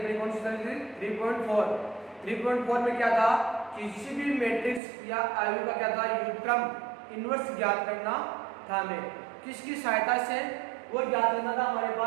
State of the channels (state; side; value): drops out; left; at 4.8 s